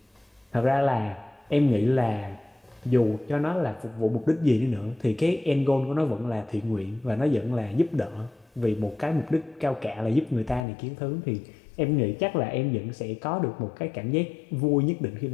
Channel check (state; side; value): drops out; right; at 10.7 s